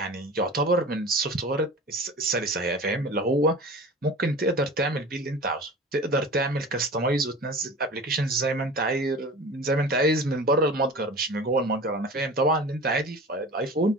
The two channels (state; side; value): normal; both; correlation 0.37